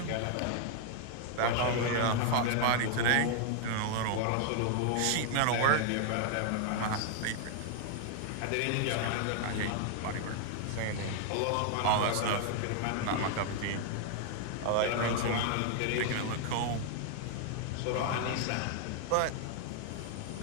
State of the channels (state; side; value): different; both; correlation 0.00